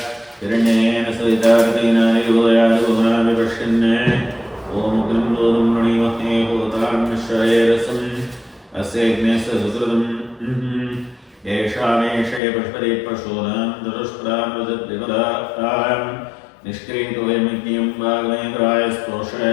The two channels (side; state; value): right; drops out; at 12.4 s